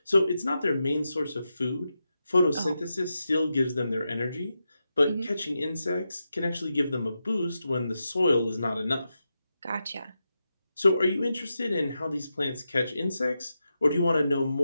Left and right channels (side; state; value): both; inverted; correlation -0.88